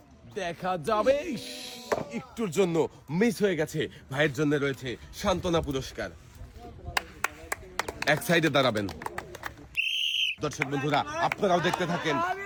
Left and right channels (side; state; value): both; identical; correlation 1.00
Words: দেখা যাবে, একটুর জন্য মিস হয়ে গেছে। ভাইয়ের জন্য রয়েছে সান্ত্বনা পুরস্কার। এক সাইডে দাঁড়াবেন। দর্শক বন্ধুরা, আপনারাও দেখতে থাকেন।